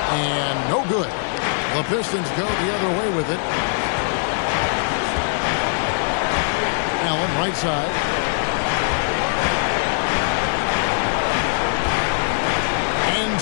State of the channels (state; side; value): silent; right; 63 dB below the other